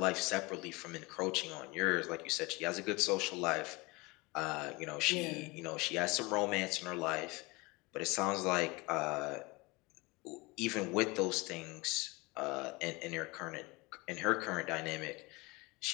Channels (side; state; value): right; quieter; 24.6 dB